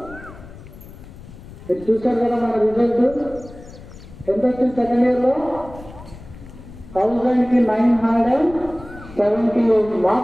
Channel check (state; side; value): noise; left; rumble, 17 dB below the sound